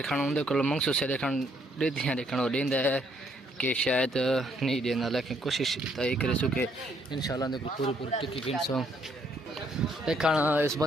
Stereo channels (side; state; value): both; normal; correlation 0.69